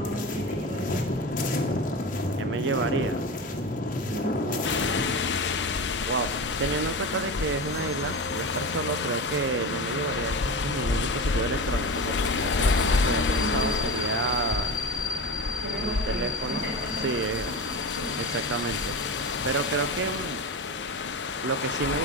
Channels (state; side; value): normal; both; correlation 0.25